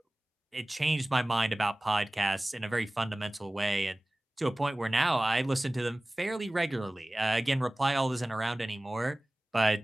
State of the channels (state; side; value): normal; both; correlation 0.98